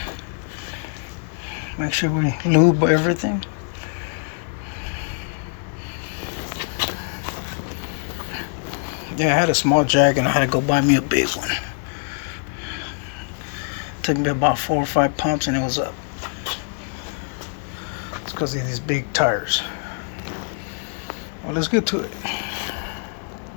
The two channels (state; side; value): silent; right; 63 dB below the other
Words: Make sure we lube everything. Yeah, I had a small jack and I had to go buy me a big one. Took me about 4 or 5 pumps and it was up. It's because of these big tires. Well, let's get to it.